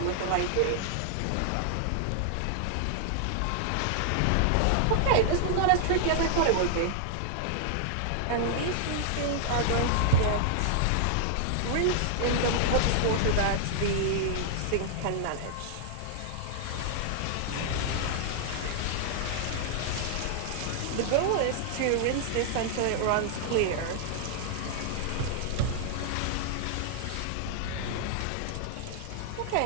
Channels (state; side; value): different; both; correlation -0.01